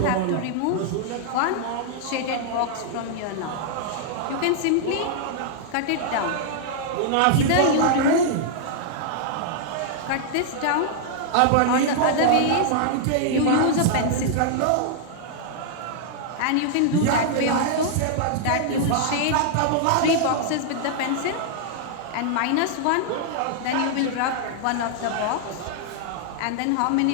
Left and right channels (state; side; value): different; both; correlation -0.01